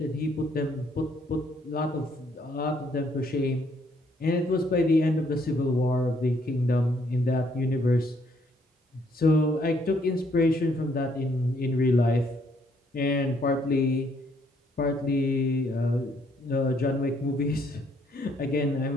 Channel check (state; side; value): normal; both; correlation 0.68